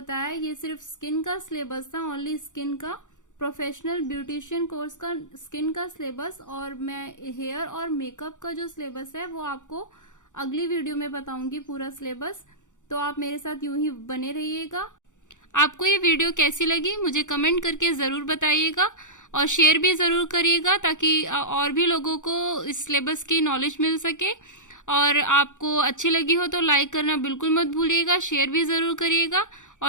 ये सिर्फ स्किन का सिलेबस था, ओनली स्किन का, प्रोफेशनल ब्यूटिशियन कोर्स का स्किन का सिलेबस, और मैं हेयर और मेकअप का जो सिलेबस है वो आपको अगली वीडियो में बताऊंगी पूरा सिलेबस। तो आप मेरे साथ यूं ही बने रहिएगा। आपको ये वीडियो कैसी लगी मुझे कमेंट करके जरूर बताइएगा, और शेयर भी जरूर करिएगा ताकि और भी लोगों को इस सिलेबस की नॉलेज मिल सके। और आपको अच्छी लगी हो तो लाइक करना बिल्कुल मत भूलिएगा, शेयर भी जरूर करिएगा,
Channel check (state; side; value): late; right; 0.86 ms